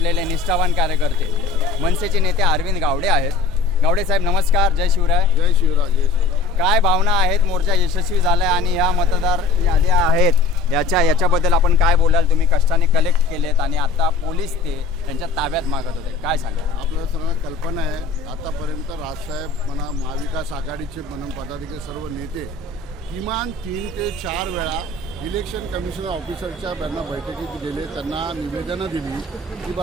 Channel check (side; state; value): right; quieter; 4.0 dB